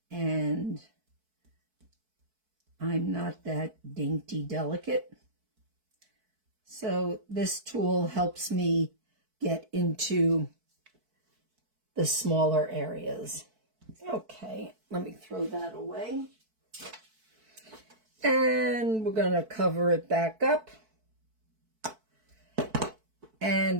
and I'm not that dainty delicate. So this tool helps me get into the smaller areas. Okay, let me throw that away. And we're going to cover it back up.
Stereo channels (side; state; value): left; late; 4.6 ms